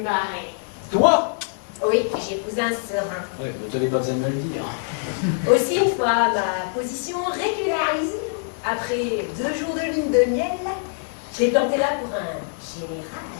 marier. Toi? Oui, j'épouse un serein. Oui, vous n'avez pas besoin de me le dire. Aussi, une fois ma position régularisée, après 2 jours de lune de miel, je l'ai planté là pour un général.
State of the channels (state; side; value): silent; right; 56 dB below the other